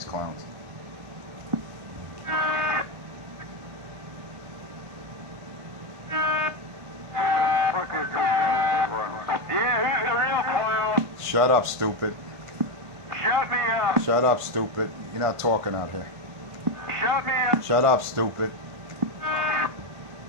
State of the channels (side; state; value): left; late; 1.5 ms